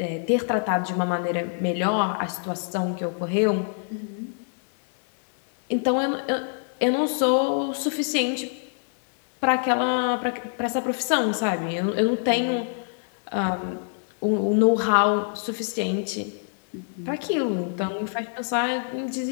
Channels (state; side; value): silent; right; digital silence